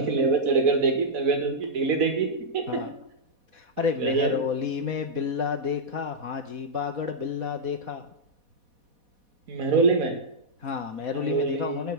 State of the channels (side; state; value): left; late; 4.1 ms